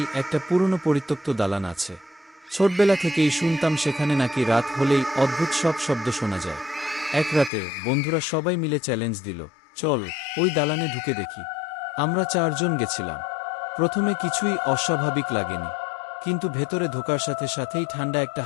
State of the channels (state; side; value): drops out; right; at 7.5 s